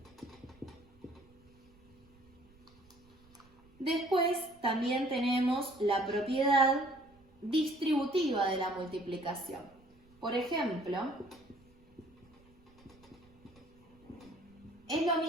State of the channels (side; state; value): right; noise; rumble, 29 dB below the sound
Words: Después también tenemos la propiedad distributiva de la multiplicación. Por ejemplo, es lo